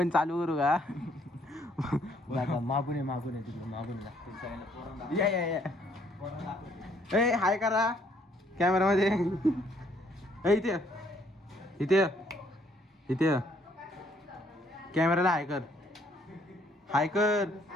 चालू करू का? मागून आहे तिकडे मागून लागते. ए हाय करा कॅमेरामध्ये. इथे इथे इथे कॅमेराला हाय कर. हाय कर.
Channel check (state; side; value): normal; both; correlation 0.66